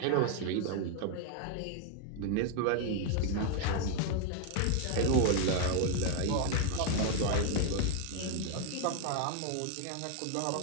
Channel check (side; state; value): both; different; correlation 0.01